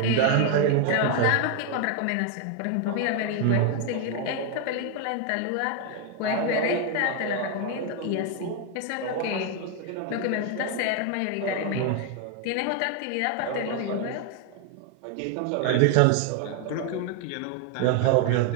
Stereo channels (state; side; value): different; both; correlation 0.01